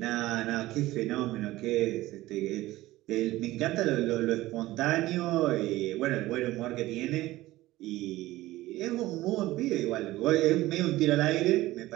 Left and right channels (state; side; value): quieter; left; 17.2 dB